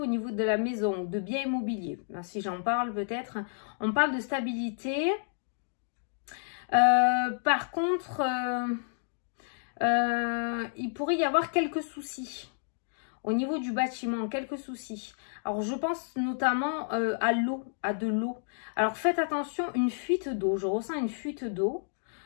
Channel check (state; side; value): silent; right; digital silence